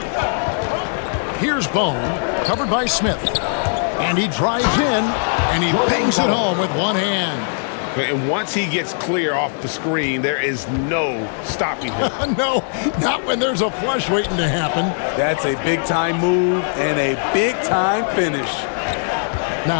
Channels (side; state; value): right; silent; digital silence